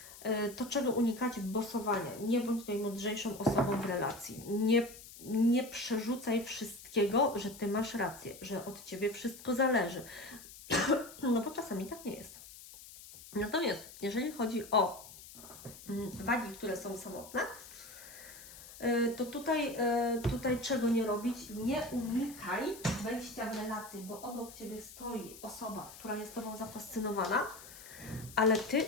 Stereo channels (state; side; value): noise; left; hiss, 17 dB below the sound